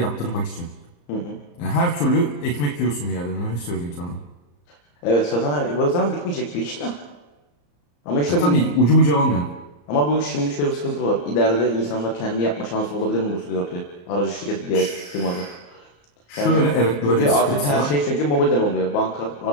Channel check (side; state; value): right; late; 34 ms